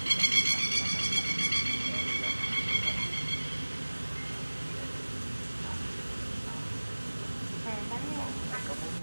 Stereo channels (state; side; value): inverted; both; correlation -1.00